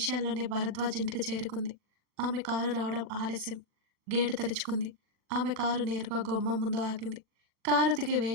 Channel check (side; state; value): left; late; 40 ms